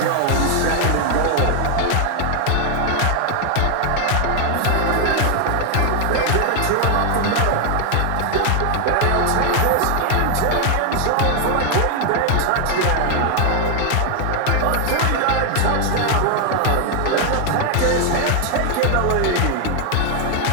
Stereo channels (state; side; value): different; both; correlation 0.00